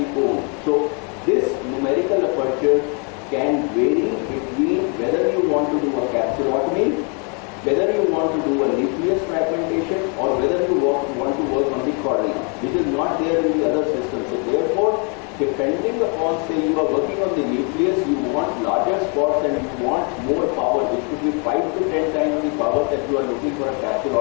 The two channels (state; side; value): quieter; right; 36.8 dB